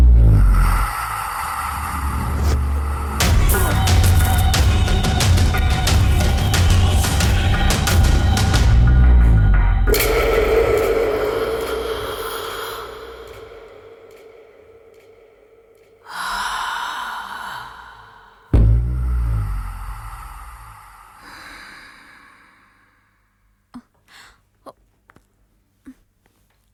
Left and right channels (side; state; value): both; identical; correlation 1.00